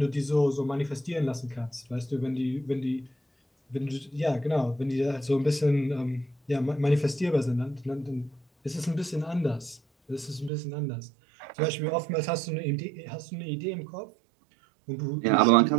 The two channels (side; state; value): left; drops out; at 10.5 s